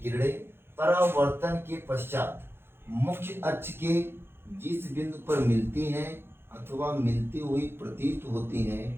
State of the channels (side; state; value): left; late; 0.11 ms